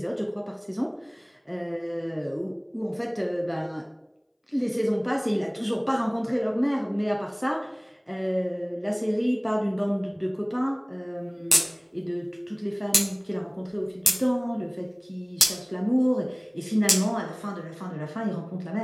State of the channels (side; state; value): both; identical; correlation 1.00